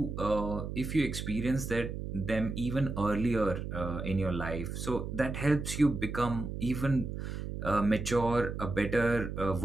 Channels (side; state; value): right; noise; hum, 6 dB below the sound